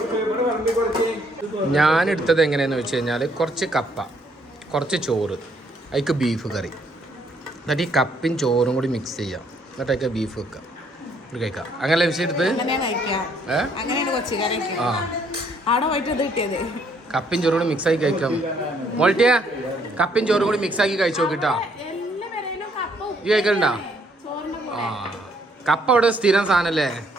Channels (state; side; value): normal; both; correlation 0.67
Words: ഞാനെടുത്തത് എങ്ങനെയാന്ന് വെച്ച് കഴിഞ്ഞാൽ കുറച്ച് കപ്പ, കുറച്ച് ചോറ്, അതിക്ക് ബീഫ് കറി, എന്നിട്ട് ഈ കപ്പയും ചോറും കൂടി മിക്സ് ചെയ്യാം, എന്നിട്ട് അതിക്ക് ബീഫ് വെക്കാം, കഴിക്കാം. അങ്ങനെ വിഷയം എടുത്ത് കപ്പയും ചോറും കൂടി മിക്സ് ആക്കി കഴിക്കാം. മോൾട്ടിയാ കപ്പയും ചോറും കൂടി മിക്സ് ആക്കി കഴിച്ചു നോക്കിട്ടാ. ഈ കഴിക്കലുണ്ടാ? ആ കപ്പ അവിടെ സ്ഥിരം സാധനല്ലേ.